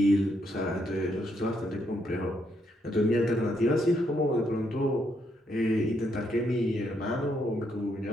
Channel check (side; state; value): both; normal; correlation 0.76